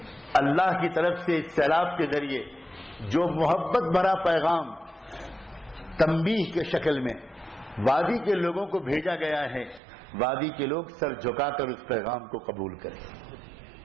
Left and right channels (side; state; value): left; drops out; at 9.8 s